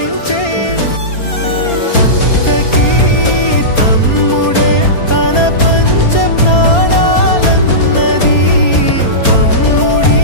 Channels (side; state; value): right; late; 4.3 ms